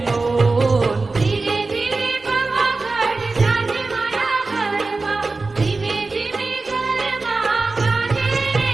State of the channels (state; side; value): quieter; left; 3.7 dB